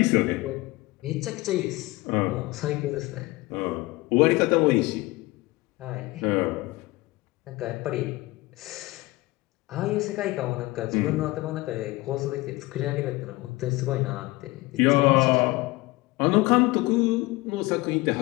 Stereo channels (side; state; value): right; quieter; 21.0 dB